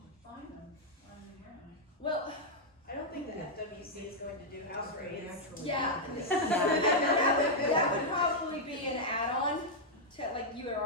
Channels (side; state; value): both; normal; correlation -0.03